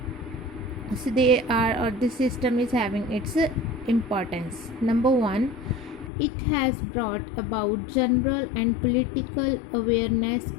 So they are, or this system is having its importance. Number 1, it has brought about general and political awareness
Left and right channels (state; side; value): drops out; right; at 6.1 s